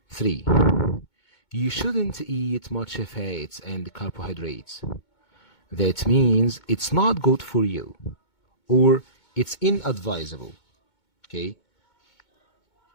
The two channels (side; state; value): right; late; 2.2 ms